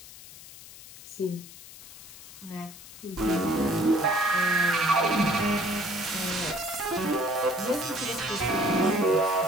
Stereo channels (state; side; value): noise; left; hiss, 17 dB below the sound